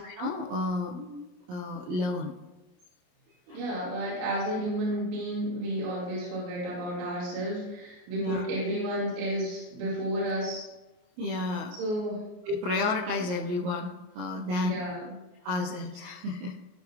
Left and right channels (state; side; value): late; left; 28 ms